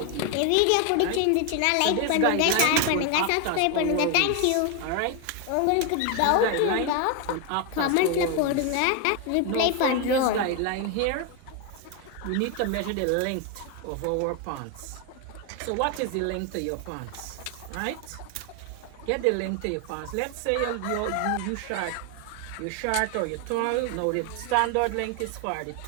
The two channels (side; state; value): both; different; correlation 0.01